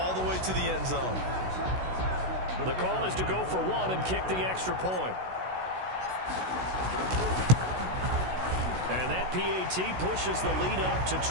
the way to the end zone. The call is to go for 1 and kick the extra point. And that PAT pushes the lead up to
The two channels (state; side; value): late; left; 16 ms